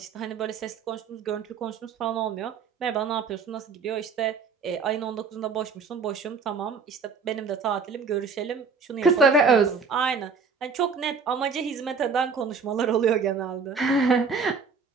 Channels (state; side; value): quieter; left; 5.2 dB